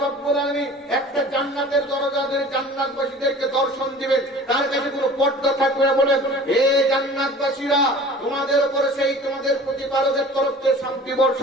রাব্বুল আলামিন একটা জান্নাতের দরজা ধরে জান্নাতবাসীদেরকে দর্শন দিবেন, তার কাছে কোনো পর্দা থাকবে না। বলেন, হে জান্নাতবাসীরা, তোমাদের উপরে সেই তোমাদের প্রতিপালকের তরফ থেকে শান্তি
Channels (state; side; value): normal; both; correlation 0.44